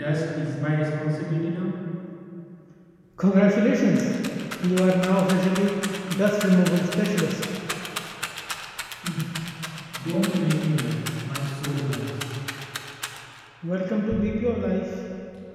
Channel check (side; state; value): both; identical; correlation 1.00